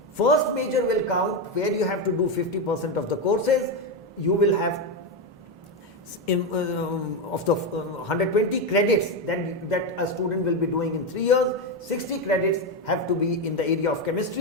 First major will count, where you have to do 50% of the courses. You will have of the 120 credits that a student will be doing in 3 years, 60 credits have to be in the area of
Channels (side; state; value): both; normal; correlation 0.10